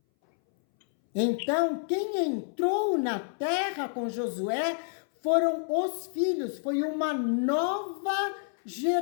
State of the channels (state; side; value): silent; right; 59 dB below the other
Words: Então, quem entrou na terra com Josué foram os filhos, foi uma nova